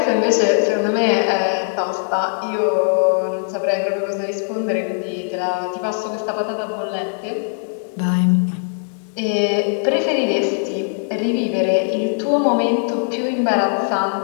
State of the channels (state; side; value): silent; right; digital silence